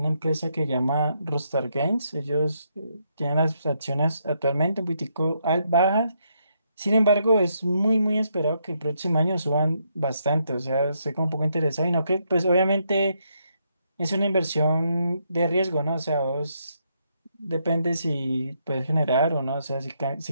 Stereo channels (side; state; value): both; inverted; correlation -0.77